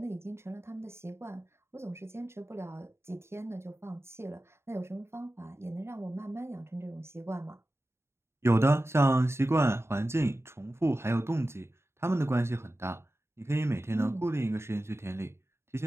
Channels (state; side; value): late; left; 0.12 ms